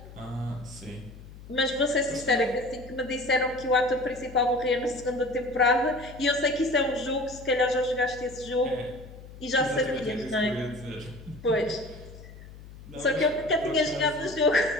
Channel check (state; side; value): noise; left; hum, 17 dB below the sound